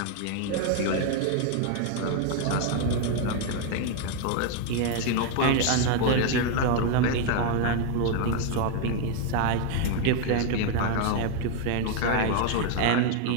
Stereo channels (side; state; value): both; different; correlation 0.00